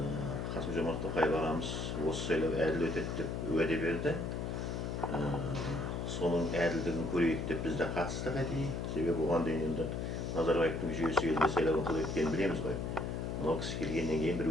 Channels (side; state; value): left; noise; hum, 3 dB below the sound